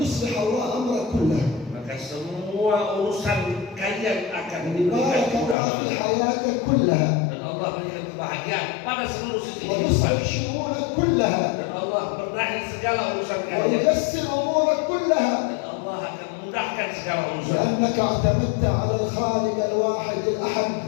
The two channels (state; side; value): drops out; right; at 5.6 s